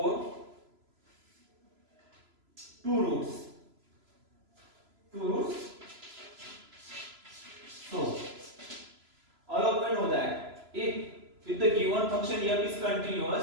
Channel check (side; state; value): left; late; 3.0 ms